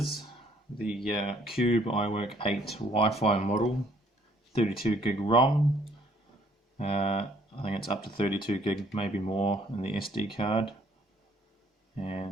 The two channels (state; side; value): normal; both; correlation 0.62